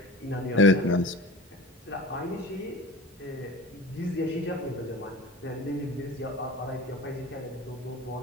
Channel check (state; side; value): normal; both; correlation 0.36